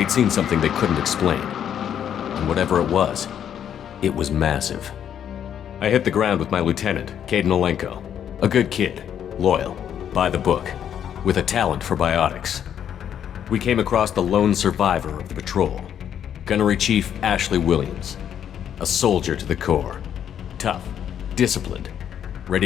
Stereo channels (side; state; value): right; quieter; 9.3 dB